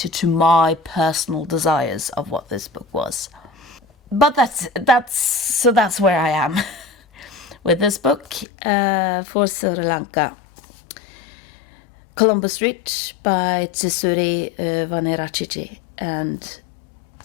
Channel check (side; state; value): right; drops out; at 8.5 s